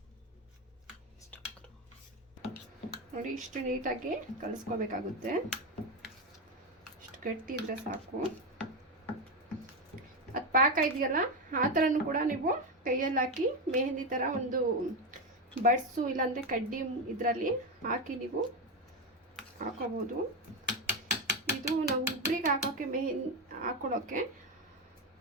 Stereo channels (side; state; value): both; normal; correlation 0.11